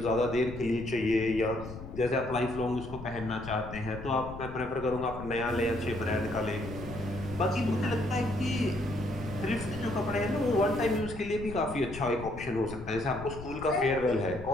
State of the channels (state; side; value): noise; left; rumble, 11 dB below the sound